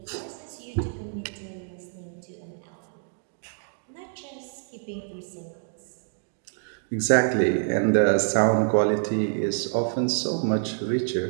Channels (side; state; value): left; silent; digital silence